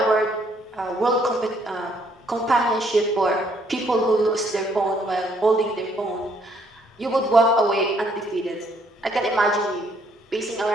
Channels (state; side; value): normal; both; correlation 0.67